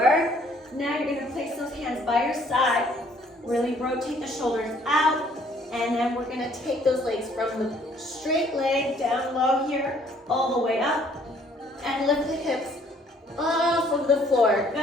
Now you're going to place those hands by your side. Really rotate the shoulders out. And then we're going to take those legs from the straight leg down low here, all the way up. And lift the hips off of the floor.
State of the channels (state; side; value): normal; both; correlation 0.61